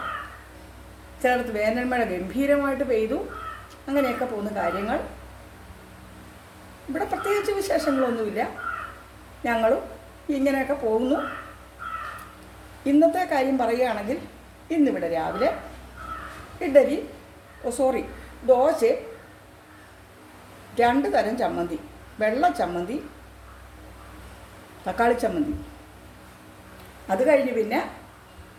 ചിലയിടത്ത് വേനൽ മഴ ഗംഭീരമായിട്ട് പെയ്തു. അങ്ങനെയൊക്കെ പോകുന്ന കാര്യങ്ങൾ. ഇവിടെ പ്രത്യേകിച്ച് വിശേഷങ്ങളൊന്നുമില്ല, ഞങ്ങളും ഇങ്ങനെയൊക്കെ പോകുന്നു. ഇന്നത്തെ കാര്യം പറയുകയാണെങ്കിൽ, ഇന്നിവിടെ രാവിലെ ദോശ, 2 തരം ചമ്മന്തി, വെള്ള ചമ്മന്തി, തക്കാളി ചമ്മന്തി. അത് കഴിഞ്ഞ് പിന്നെ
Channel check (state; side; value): identical; both; correlation 1.00